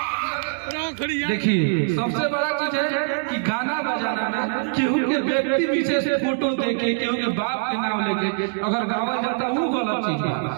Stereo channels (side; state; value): left; silent; 63 dB below the other